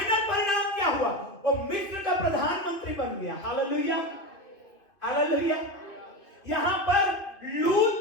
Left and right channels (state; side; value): late; right; 2.5 ms